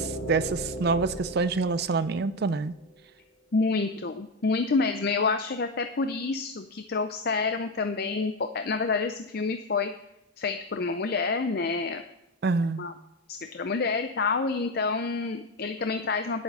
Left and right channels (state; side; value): normal; both; correlation 0.13